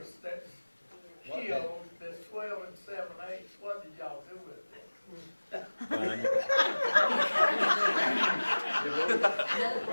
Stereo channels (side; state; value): both; inverted; correlation -1.00